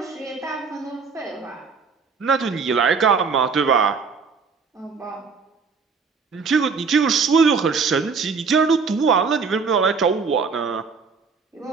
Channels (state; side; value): quieter; left; 5.2 dB